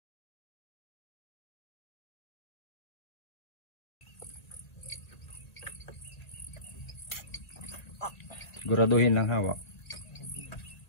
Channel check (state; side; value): late; right; 2.1 ms